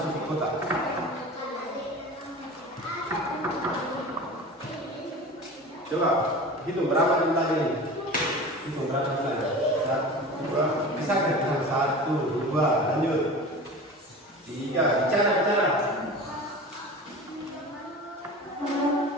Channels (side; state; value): both; normal; correlation 0.35